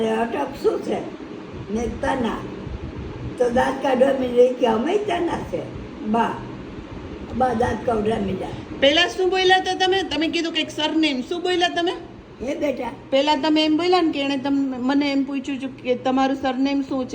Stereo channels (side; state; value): both; identical; correlation 1.00